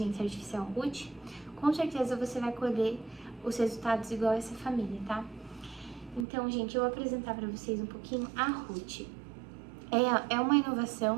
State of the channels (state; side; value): drops out; left; at 6.2 s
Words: artificial Ruth, com certeza você vai colher os resultados igual a essa família, tá? Então, gente, eu vou apresentar para vocês um pouquinho a Ruth. É uma